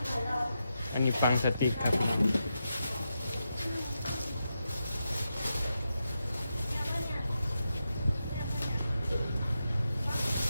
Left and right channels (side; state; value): both; inverted; correlation -0.87